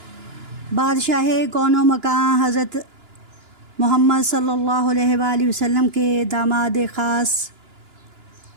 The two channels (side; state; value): left; late; 2.9 ms